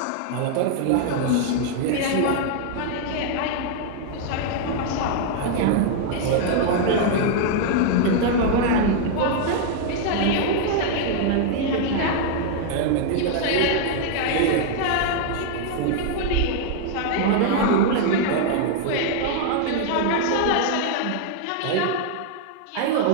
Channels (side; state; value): both; different; correlation 0.00